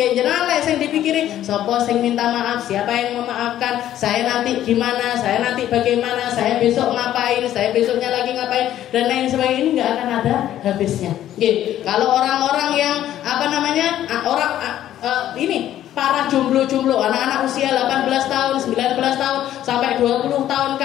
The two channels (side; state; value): right; quieter; 12.1 dB